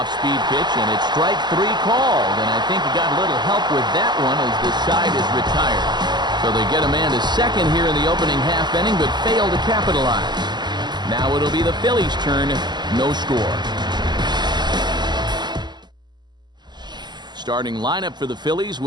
pitch, and it's strike 3 called, and I think he got a little help with that one as the side is retired. So they get a man to second here in the opening half inning, but fail to capitalize. Now it'll be the Phillies' turn, no score. Starting lineup for the Phillies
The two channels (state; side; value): late; left; 0.21 ms